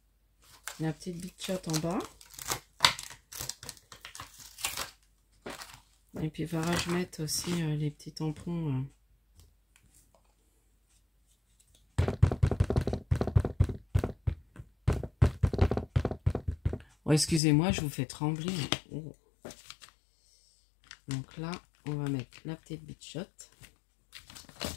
La petite bichotte en bas. Et puis, il faudra que je mette aussi les petits tampons. Oh, excusez-moi, je vous fais trembler. Oh. Donc là, on va mettre la petite bichotte.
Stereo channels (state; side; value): drops out; right; at 17.4 s